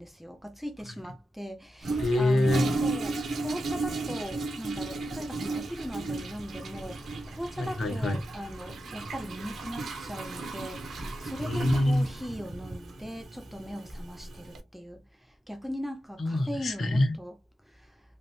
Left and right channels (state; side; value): normal; both; correlation 0.90